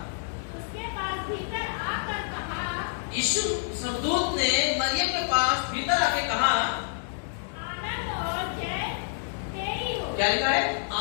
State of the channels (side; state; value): right; silent; digital silence